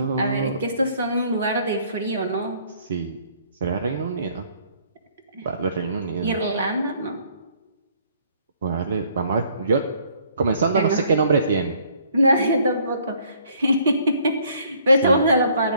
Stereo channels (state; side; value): inverted; both; correlation -0.62